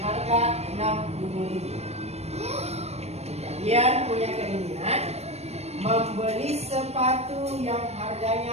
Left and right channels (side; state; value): left; late; 0.31 ms